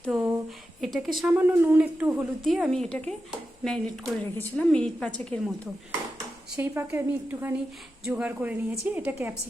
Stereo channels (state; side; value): normal; both; correlation 0.90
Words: তো এটাকে সামান্য নুন একটু হলুদ দিয়ে আমি এটাকে ম্যারিনেট করে রেখেছিলাম মিনিট 5 মতো। সেই পাকে আমি একটুখানি জোগাড় করে নিয়েছি। এটা